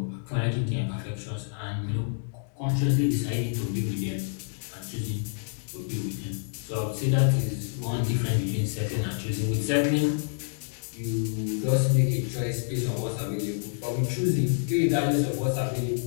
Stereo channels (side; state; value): right; silent; digital silence